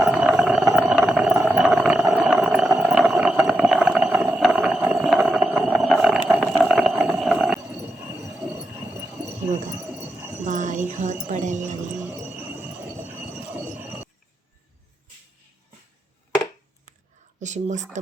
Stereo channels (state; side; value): normal; both; correlation 0.87